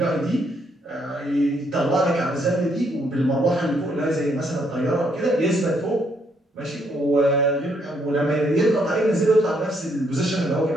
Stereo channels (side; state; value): both; normal; correlation 0.72